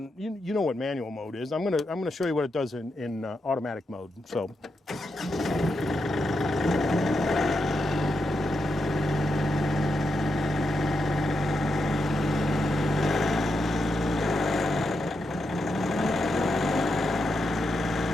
you know what manual mode is. I'm gonna show you what it does in automatic mode. So.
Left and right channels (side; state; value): both; normal; correlation 0.84